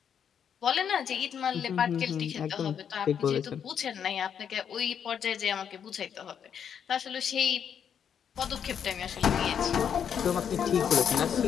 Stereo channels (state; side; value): quieter; right; 8.1 dB